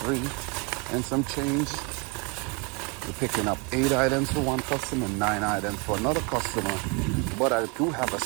and some change. We're picking up 8 items for one customer, 9 items for another customer. But I do have a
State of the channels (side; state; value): left; quieter; 31.8 dB